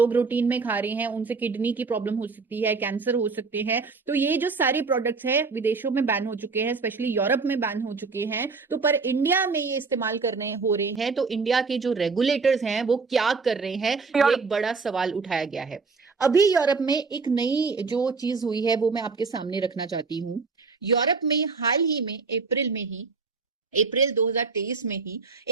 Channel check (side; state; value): left; quieter; 4.5 dB